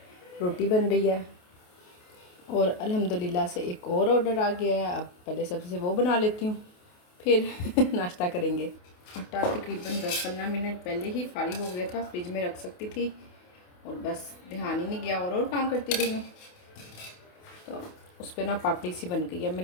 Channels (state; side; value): late; right; 28 ms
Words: रोटी बन रही है और अल्हम्दुलिल्लाह से एक और ऑर्डर आ गया है। अब पहले सबसे वो बना लेती हूँ, फिर नाश्ता करेंगे। आटा तकरीबन 10-15 मिनट पहले ही फारिग हो गया था, फ्रिज में रख सकती थी और बस ध्यान ही नहीं गया और काम करती रही हूँ। तो उस पर ना पापड़ी सी बन गई है।